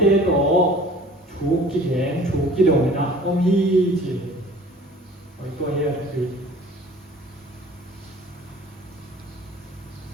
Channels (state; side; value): normal; both; correlation 0.47